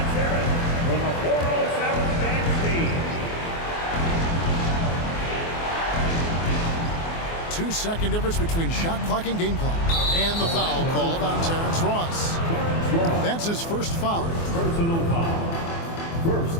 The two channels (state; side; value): late; right; 24 ms